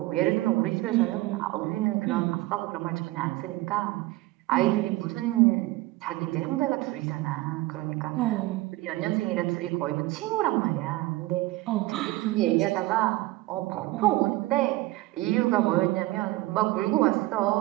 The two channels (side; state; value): left; quieter; 19.0 dB